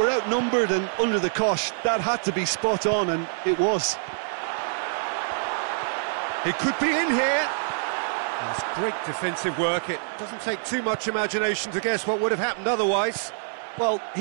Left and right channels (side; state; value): left; silent; 61 dB below the other